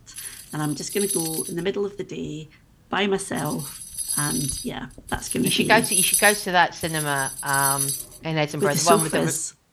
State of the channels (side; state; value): both; identical; correlation 1.00